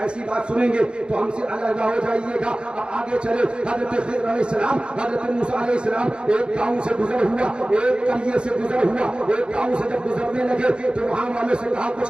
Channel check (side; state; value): left; late; 0.054 ms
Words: ایسی بات سنیں گے تو ہم سے علیحدہ ہو جائیے گا. اب آگے چلے حضرت خضر علیہ السلام، حضرت موسیٰ علیہ السلام ایک گاؤں سے گزر ہوا، ایک قریے سے گزر ہوا. ایک گاؤں سے جب گزرنے لگے تو وہاں والوں سے کہا